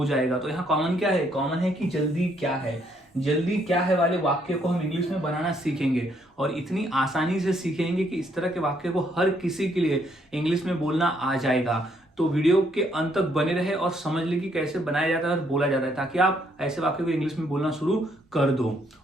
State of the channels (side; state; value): both; normal; correlation 0.70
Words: जाएगा। तो यहाँ कॉमन क्या है, कॉमन है कि जल्दी क्या है, जल्दी क्या है वाले वाक्य को हम इंग्लिश में बनाना सीखेंगे और इतनी आसानी से सीखेंगे कि इस तरह के वाक्य को हर किसी के लिए इंग्लिश में बोलना आ जाएगा। तो वीडियो के अंत तक बने रहे और समझ ले कि कैसे बनाया जाता है और बोला जाता है, ताकि आप ऐसे वाक्य को इंग्लिश में बोलना शुरू कर दो।